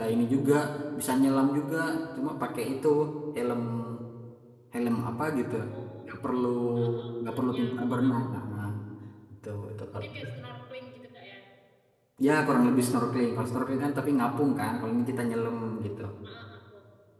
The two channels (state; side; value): identical; both; correlation 1.00